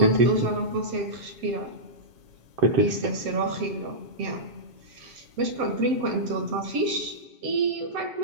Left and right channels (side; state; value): left; late; 7.4 ms